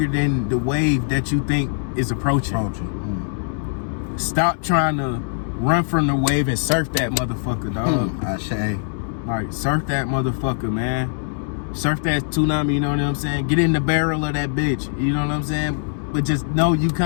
than the wave that you think is approaching. Stop trying to run from the wave and surf that motherfucker, dog. Like, surf that motherfucker, man. Surf that tsunami, you know what I'm saying? Get in the barrel of that bitch, you know what I'm saying? But just know you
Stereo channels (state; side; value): silent; right; digital silence